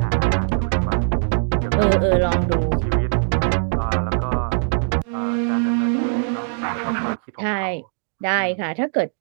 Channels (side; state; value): left; silent; digital silence